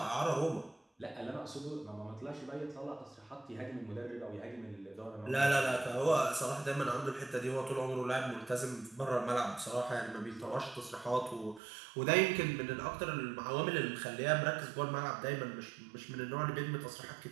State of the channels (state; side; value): drops out; left; at 11.6 s